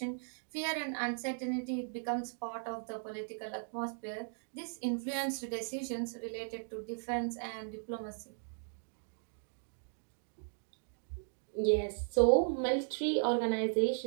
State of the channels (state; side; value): silent; left; digital silence